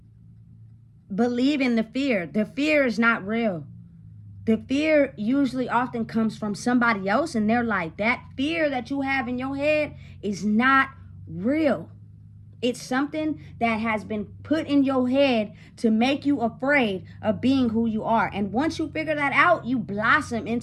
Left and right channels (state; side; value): identical; both; correlation 1.00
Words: believing the fear. The fear is not real. The fear usually often comes from somebody else, and they're like, that fear that you have in your head is not real. It's something that has been put in your head to make you afraid of being who you are. And once you figure that out, you blossom